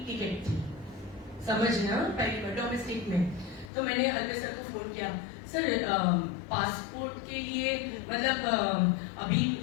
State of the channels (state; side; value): drops out; right; at 3.7 s